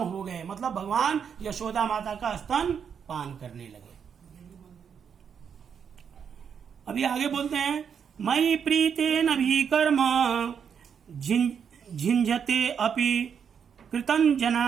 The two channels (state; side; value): quieter; left; 7.3 dB